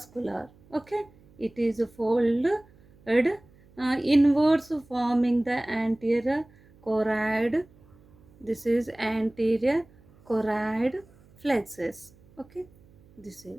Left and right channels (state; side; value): noise; right; hum, 28 dB below the sound